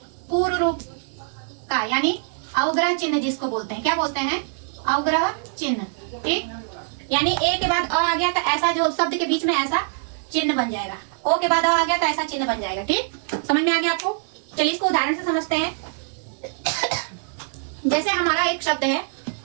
पूर्व रूप का, यानी अवग्रह चिन्ह जिसको बोलते हैं, क्या बोलते हैं, अवग्रह चिन्ह, ठीक। यानी ए के बाद अ आ गया तो ऐसा जो शब्द के बीच में ऐसा चिन्ह बन जाएगा, ओ के बाद अ आ गया तो ऐसा चिन्ह बन जाएगा, ठीक। समझ में आ गया आपको। चलिए इसको उदाहरण से समझते हैं। जैसे हमारा एक शब्द है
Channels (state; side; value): silent; left; digital silence